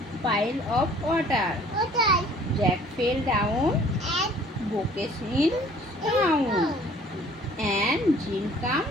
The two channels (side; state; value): both; normal; correlation 0.53